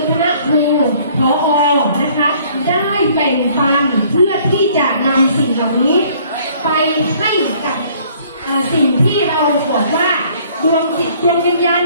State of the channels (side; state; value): both; inverted; correlation -0.58